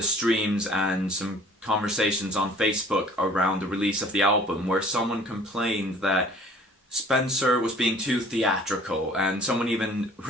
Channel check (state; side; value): normal; both; correlation 0.52